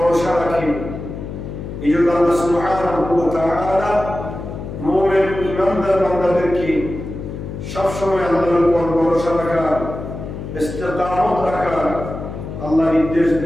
রাখে। এই জন্য আল্লাহ সুবহানাহু ওয়া তাআলা মুমিন ইমানদার বান্দাদেরকে সবসময় আল্লাহর উপর ভরসা রাখা, ইস্তেকামত রাখা আল্লাহ নির্দেশ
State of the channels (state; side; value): noise; left; hum, 8 dB below the sound